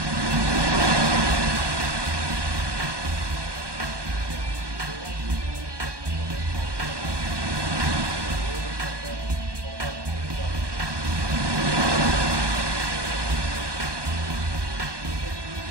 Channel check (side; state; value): left; late; 1.2 ms